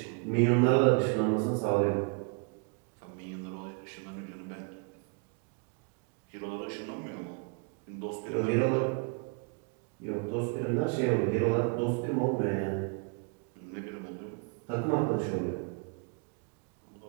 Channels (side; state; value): left; quieter; 36.1 dB